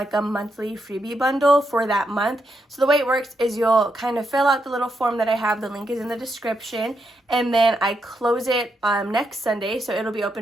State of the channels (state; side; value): normal; both; correlation 0.82